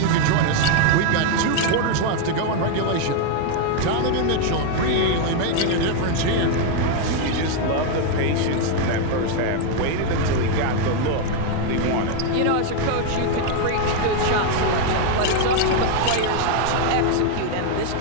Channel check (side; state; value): both; different; correlation 0.01